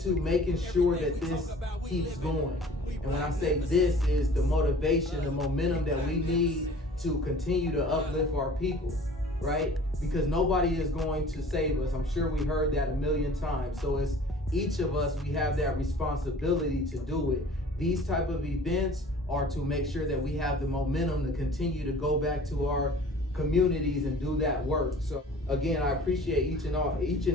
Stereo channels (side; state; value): both; normal; correlation 0.47